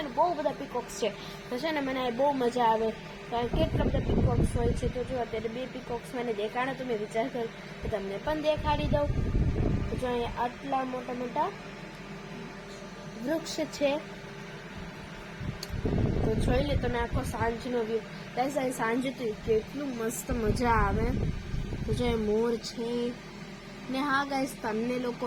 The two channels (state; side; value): identical; both; correlation 1.00